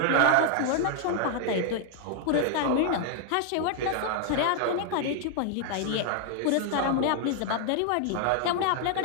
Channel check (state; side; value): different; both; correlation 0.00